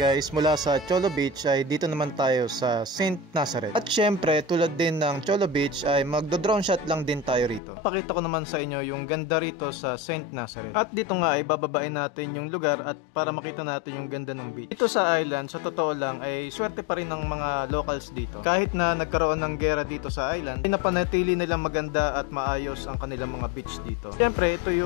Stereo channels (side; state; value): right; drops out; at 7.6 s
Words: mula sa Cholo Beach ay dito naman tayo sa St. Nazareth. At syempre, tulad din ng Cholo Beach ay magdo-drone shot lang din tayo rito. Pakita ko naman sa inyo yung ganda rito sa St. Nazareth. At dito nga ay bababain natin yung lugar at para makita natin yung ganda ng beach. Dito sa island, sa totoo lang ay swerte pa rin ng mga locals dito. Kahit na nagkaroon ng gera dito sa island, pinapanatili nilang maganda at maayos ang kanilang mga beach dito. Syempre, ito